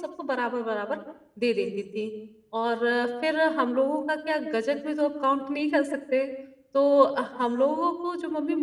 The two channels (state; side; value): identical; both; correlation 1.00